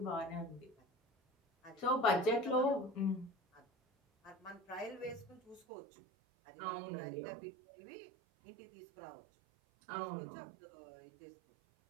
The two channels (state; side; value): drops out; left; at 5.7 s